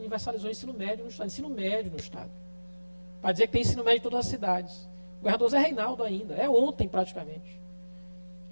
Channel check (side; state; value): both; inverted; correlation -1.00